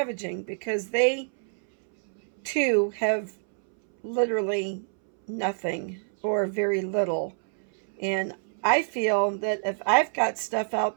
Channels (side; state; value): left; silent; 61 dB below the other